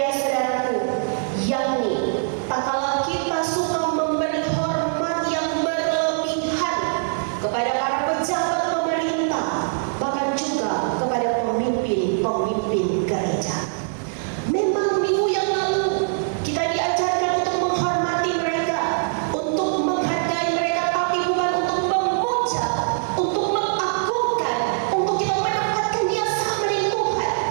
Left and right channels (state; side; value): silent; left; digital silence